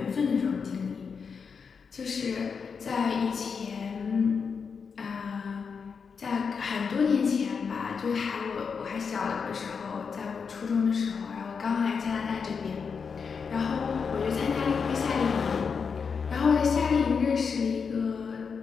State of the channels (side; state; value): right; quieter; 5.8 dB